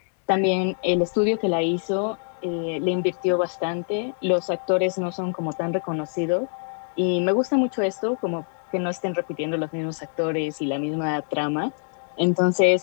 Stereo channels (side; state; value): right; silent; 62 dB below the other